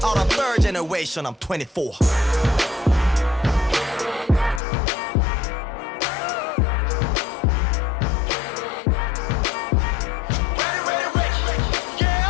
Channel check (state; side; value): drops out; right; at 4.6 s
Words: out of third generation I'm 24